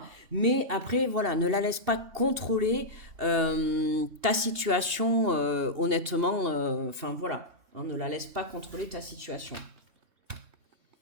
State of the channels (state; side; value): late; left; 2.8 ms